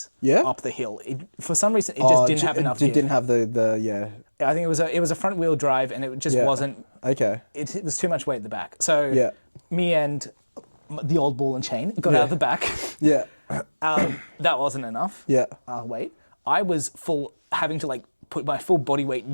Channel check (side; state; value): both; inverted; correlation -1.00